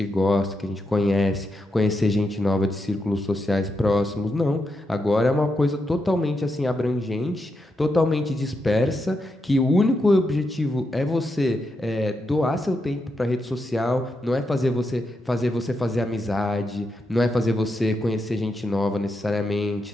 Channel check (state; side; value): normal; both; correlation 0.84